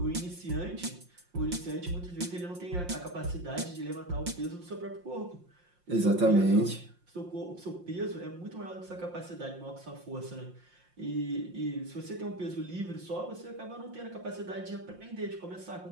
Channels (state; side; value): late; left; 5.7 ms